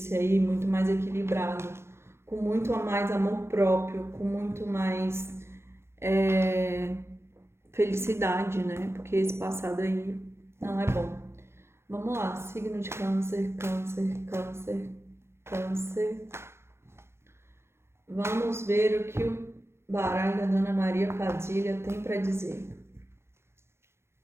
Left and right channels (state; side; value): late; left; 0.12 ms